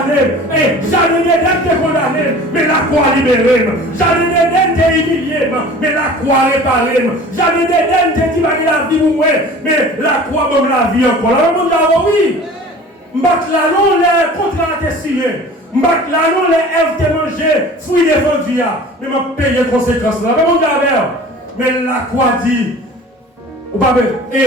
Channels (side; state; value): both; normal; correlation 0.43